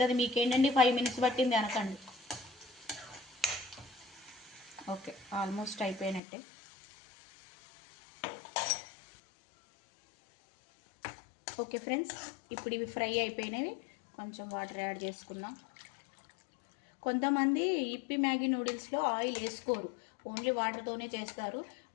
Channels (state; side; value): drops out; right; at 6.2 s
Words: మీకేంటండి 5 minutes పట్టింది అనకండి. ఓకే, ఆల్మోస్ట్ అయిపోయినట్టే. ఓకే ఫ్రెండ్స్, ఇప్పుడు ఇవి ఫ్రై అయిపోయినవి. కొంచెం వాటర్ యాడ్ చేసుకుందాం. కొంతమంది ఇప్పి మ్యాగీ నూడిల్స్లో ఆయిల్ వేసుకోరు, ఓన్లీ వాటర్తోనే చేస్తారు.